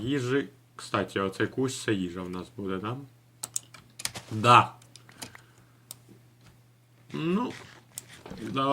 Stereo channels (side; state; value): both; identical; correlation 1.00